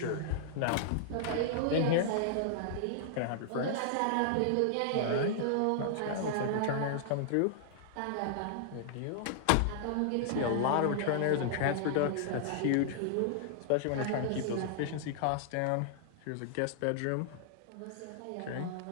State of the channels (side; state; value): both; different; correlation -0.01